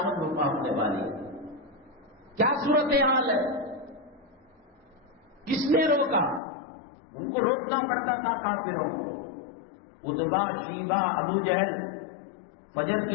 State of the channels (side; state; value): right; drops out; at 6.4 s